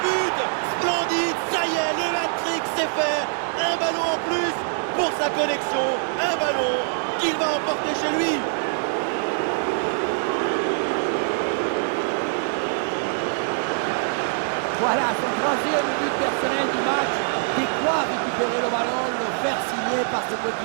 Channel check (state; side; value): silent; left; digital silence